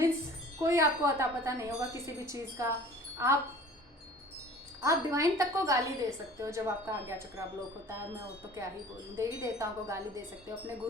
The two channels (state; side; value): normal; both; correlation 0.46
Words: कोई आपको अता पता नहीं होगा किसी भी चीज़ का। आप डिवाइन तक को गाली दे सकते हो जब आपका आज्ञा चक्रा ब्लॉक होता है। मैं वो तो क्या ही बोलूँ, देवी देवताओं को गाली दे सकते हो, अपने